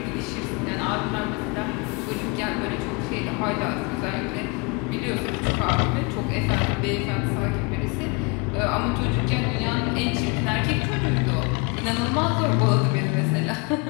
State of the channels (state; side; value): quieter; right; 29.8 dB